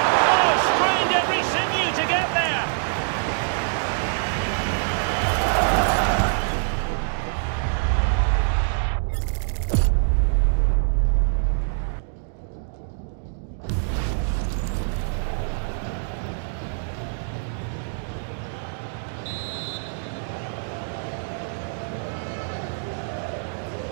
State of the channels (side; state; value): left; silent; digital silence